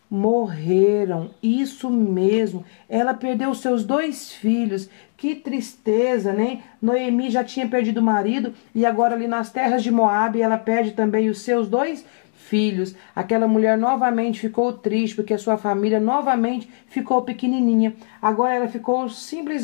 morreram. Isso mesmo. Ela perdeu seus 2 filhos. Que tristeza, né? Noemi já tinha perdido o marido e agora ali nas terras de Moabe ela perde também os seus 2 filhos. Aquela mulher novamente ficou triste porque a sua família novamente ficou pequenininha. Agora ela ficou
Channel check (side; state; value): right; silent; 61 dB below the other